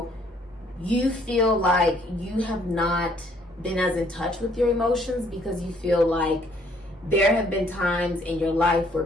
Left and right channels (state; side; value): normal; both; correlation 0.64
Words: you feel like you have not been as in touch with your emotions because you feel like there have been times in your life where